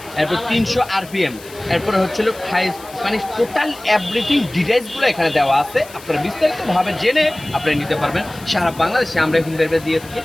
এরপর 300 আরপিএম। এরপরে হাই, মানে টোটাল এভরিথিং ডিটেইলসগুলো এখানে দেওয়া আছে। আপনারা বিস্তারিতভাবে জেনে আপনারা নিতে পারবেন। সারা বাংলাদেশে আমরা হোম ডেলিভারি দিয়ে থাকি,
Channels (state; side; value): noise; left; hiss, 20 dB below the sound